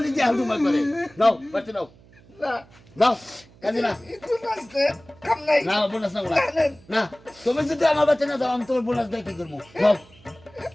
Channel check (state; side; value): noise; right; hum, 26 dB below the sound